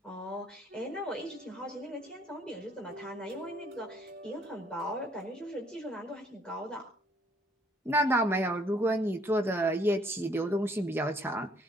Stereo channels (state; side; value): normal; both; correlation 0.64